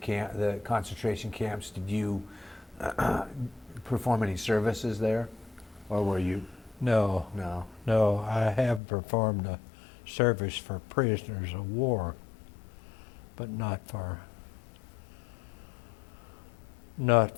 the concentration camps, did you perform any services there, or were you? No, I have performed a service for prisoners of war, but not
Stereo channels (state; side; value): drops out; right; at 8.8 s